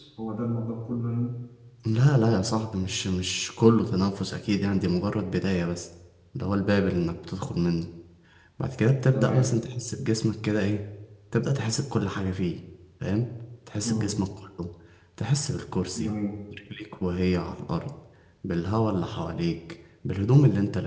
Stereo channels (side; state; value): both; identical; correlation 1.00